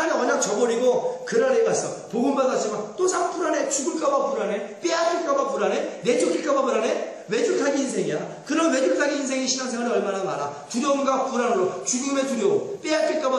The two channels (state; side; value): identical; both; correlation 1.00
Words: 언약 저버리고 그랄에 갔어. 복음 받았지만 또 상 불안해. 죽을까봐 불안해. 빼앗길까봐 불안해. 내쫓길까봐 불안해. 외줄타기 인생이야. 그런 외줄타기 인생의 신앙생활이 얼마나 많아. 두려움과 불안으로 죽음의 두려움,